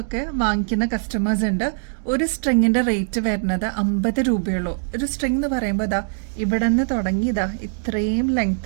വാങ്ങിക്കുന്ന കസ്റ്റമേഴ്സ് ഉണ്ട്. ഒരു സ്ട്രിങ്ങിന്റെ റേറ്റ് വരുന്നത് 50 രൂപയുള്ളൂ. ഒരു സ്ട്രിങ് എന്ന് പറയുമ്പോൾ ഇതാ ഇവിടെ നിന്ന് തുടങ്ങി ഇതാ ഇത്രയും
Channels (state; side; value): silent; left; digital silence